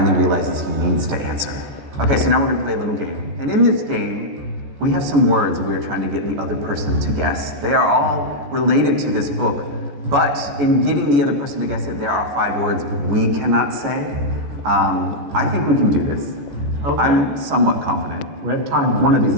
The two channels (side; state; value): left; late; 14 ms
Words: realizes he needs to answer. Okay, so now we're gonna play a little game. And in this game, we have some words we are trying to get the other person to guess. They are all related to this book, but in getting the other person to guess it, there are 5 words we cannot say. I think we can do this. Okay. I'm somewhat confident. We have time. One of these